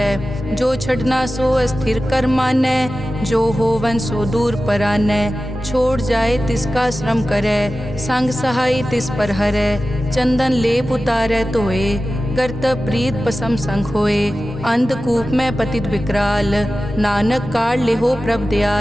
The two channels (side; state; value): both; normal; correlation 0.95